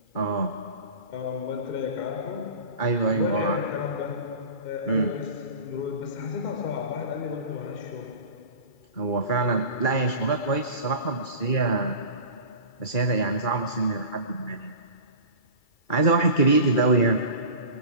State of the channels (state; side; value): late; right; 2.3 ms